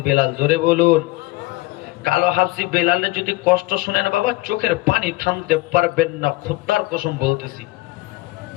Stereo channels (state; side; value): quieter; right; 20.8 dB